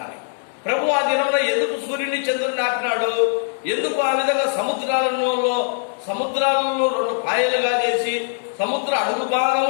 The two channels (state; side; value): silent; right; digital silence